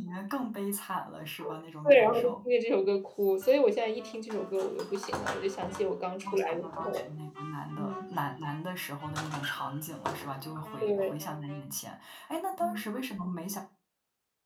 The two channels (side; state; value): both; identical; correlation 1.00